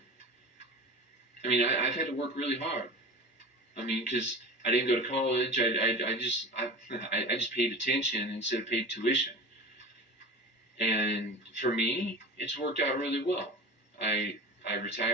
I mean, I've had to work really hard. I mean, because I didn't go to college. I just paid attention instead of paid tuition. And for me, it's worked out really well. I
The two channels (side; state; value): both; normal; correlation 0.33